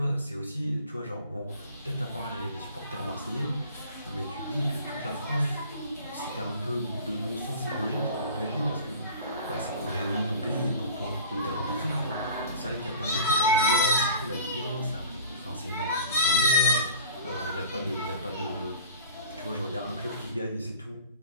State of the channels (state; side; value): inverted; both; correlation -0.44